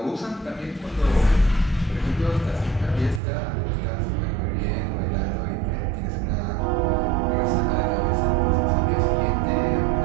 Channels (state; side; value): drops out; left; at 3.2 s